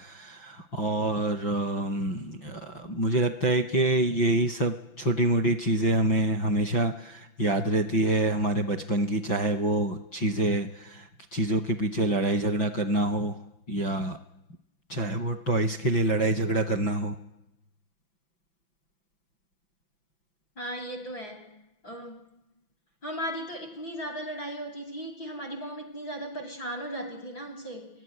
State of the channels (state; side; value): late; right; 6.0 ms